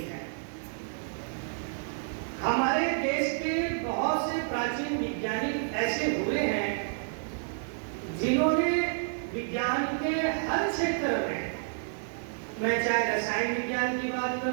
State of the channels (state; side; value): silent; left; 58 dB below the other